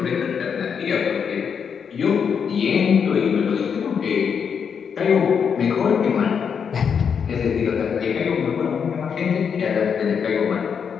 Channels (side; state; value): right; quieter; 6.9 dB